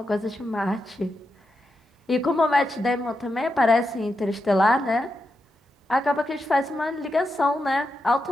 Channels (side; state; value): both; normal; correlation 0.87